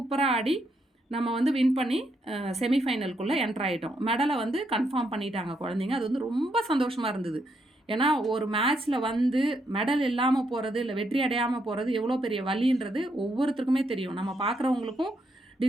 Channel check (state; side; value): normal; both; correlation 0.77